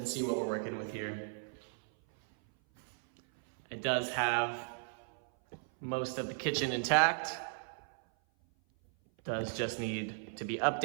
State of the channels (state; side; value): silent; left; 54 dB below the other